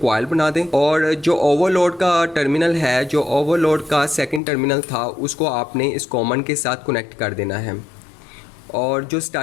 बना दें। और जो ओवरलोड का टर्मिनल है, जो ओवरलोड का सेकंड टर्मिनल था, उसको आपने इस कॉमन के साथ कनेक्ट कर देना है। और जो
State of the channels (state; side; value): drops out; right; at 4.4 s